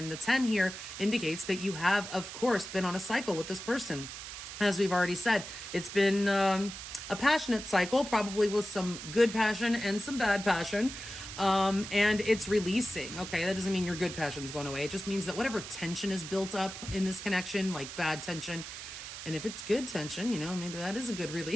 the 10 here indicates that you have, of course, been on a cycle with this person. As we've already said, it's been a passionate cycle, probably with some good passion and some bad passion, and it's releasing. Okay, that doesn't mean your good passion's going away. It just means that whatever tension is built up in this connection, like bad tension, and if it's good tension, you know, maybe that is a good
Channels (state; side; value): noise; right; hiss, 10 dB below the sound